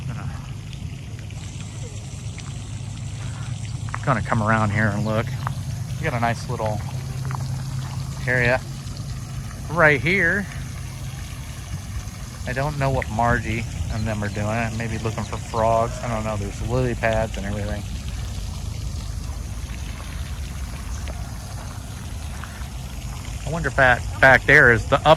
Gonna come around here and look. We got a nice little area right here. I don't know what Margie and them are doing. Maybe looking for frogs. I don't know. There's lily pads and everything. I wonder if that back there is the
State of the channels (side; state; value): both; identical; correlation 1.00